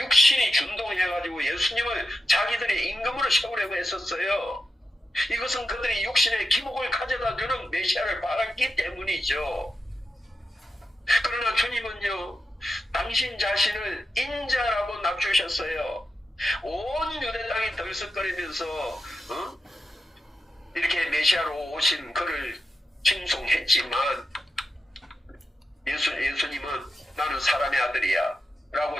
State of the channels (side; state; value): both; normal; correlation 0.89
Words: 준동해가지고 예수님을 자기들의 임금으로 세우려고 했었어요. 이것은 그들이 육신의 기복을 가져다 주는 메시아를 바랐기 때문이죠. 그러나 주님은요 당신 자신을 인자라고 낮추셨어요. 온 유대 땅이 들썩거리면서 이렇게 메시아로 오신 그를 칭송했지만 예수님은 나는 사람의 아들이야